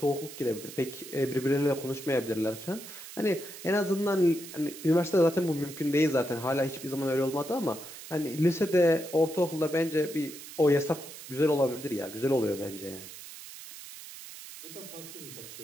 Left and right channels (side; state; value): right; noise; hiss, 14 dB below the sound